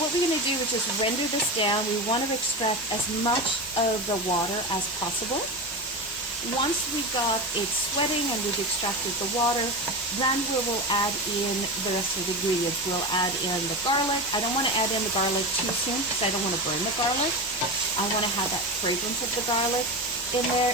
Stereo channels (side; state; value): both; normal; correlation 0.22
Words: what we're going to do is just render this down. We want to extract as much of the water as possible. Once we got it sweating and we've extracted the water, then we will add in the rest of the ingredients. We'll add in the garlic. I don't want to add in the garlic too soon because I don't want to burn the garlic. I want to have that fragrance of the garlic in there,